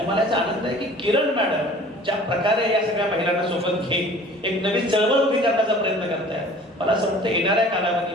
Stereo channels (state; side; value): normal; both; correlation 0.47